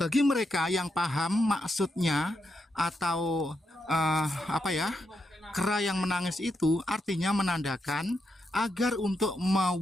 mereka yang paham maksudnya atau kera yang menangis itu artinya menandakan agar untuk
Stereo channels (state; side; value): normal; both; correlation 0.83